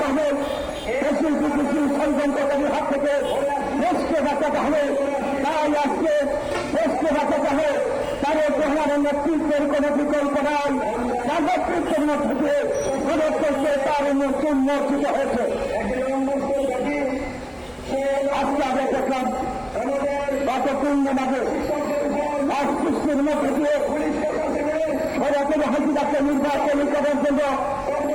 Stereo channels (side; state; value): both; identical; correlation 1.00